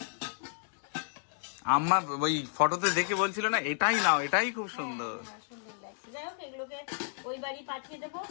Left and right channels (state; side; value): silent; right; digital silence